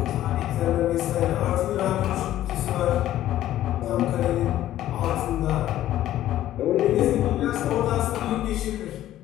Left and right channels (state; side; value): quieter; right; 13.2 dB